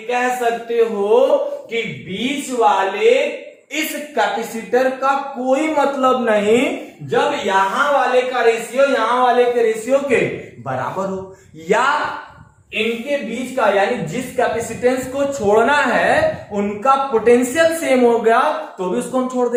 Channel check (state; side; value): identical; both; correlation 1.00